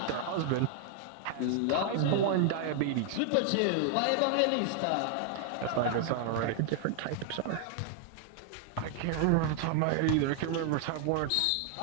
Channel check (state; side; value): different; both; correlation 0.00